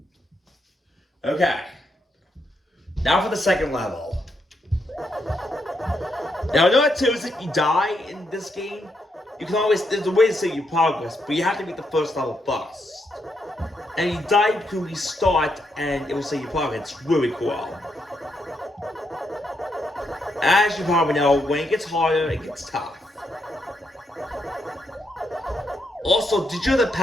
Okay. Now for the second level. Now I know what too is if you die in this game, you can always, there's a way to save your progress, but you have to beat the first level first. And you die, you can restart and it will save your progress. It's really cool. As you probably know, when it gets harder, it gets tough. Also, did you know that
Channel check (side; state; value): both; normal; correlation 0.80